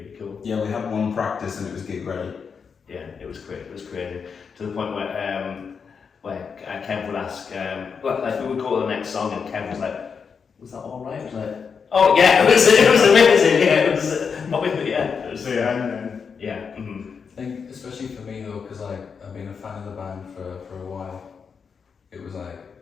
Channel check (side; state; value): right; quieter; 6.0 dB